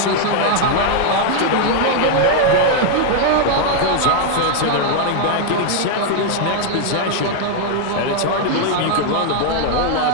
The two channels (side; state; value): both; different; correlation 0.00